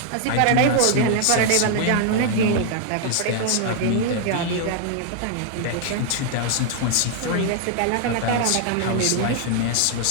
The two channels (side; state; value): both; different; correlation 0.00